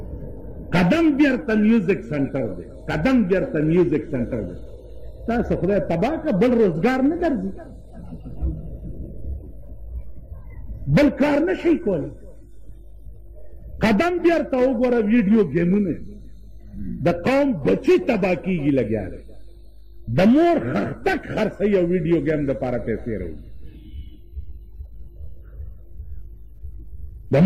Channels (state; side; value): identical; both; correlation 1.00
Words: قدم بیرته میوزک سنټر دی، قدم بیرته میوزک سنټر دی. تاسو خدای تباه که بل روزګار نه درځي، بل کار نه شي کولی. قدم بیرته وګوره ویډیو گیمونه د قوم بچی تباه کیږي لګیا دی، د مور خښتک خرڅوي او ویډیو گیم دپاره پیسې راوړي، د